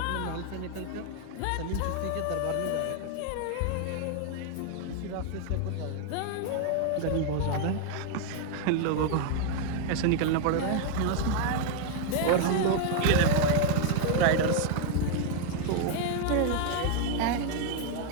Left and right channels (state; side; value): different; both; correlation 0.00